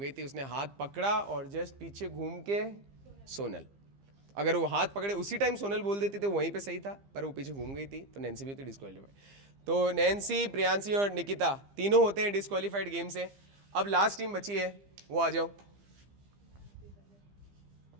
थी, उसने हाथ पकड़ा और जस्ट पीछे घूम के सोनल। अगर वो हाथ पकड़े उसी टाइम सोनल बोल देती तो वहीं पे सही था, पर वो पीछे घूम गई थी तो नैन्सी भी होती डिस्क्वालीफाइड। तो नैन्सी, प्रियांशी और निकिता तीनों होते हैं डिस्क्वालीफाइड गेम से। अब लास्ट टीम बची है, वो आ जाओ।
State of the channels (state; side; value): late; left; 15 ms